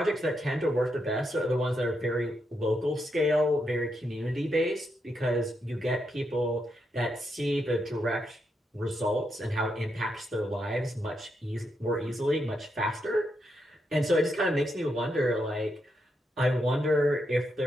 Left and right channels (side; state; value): both; normal; correlation 0.82